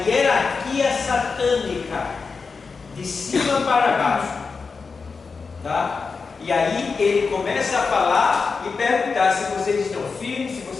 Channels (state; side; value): quieter; right; 4.8 dB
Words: satânica, de cima para baixo. Tá? E aí ele começa a falar e perguntar se vocês estão firmes, se